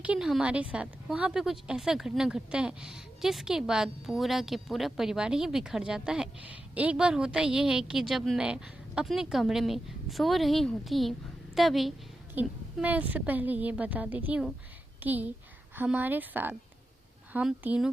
हमारे साथ वहाँ पे कुछ ऐसा घटना घटता है जिसके बाद पूरा के पूरा परिवार ही बिखर जाता है। एक बार होता ये है कि जब मैं अपने कमरे में सो रही होती हूँ तभी मैं उससे पहले ये बता देती हूँ कि हमारे साथ हम तीनों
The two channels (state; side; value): normal; both; correlation 0.90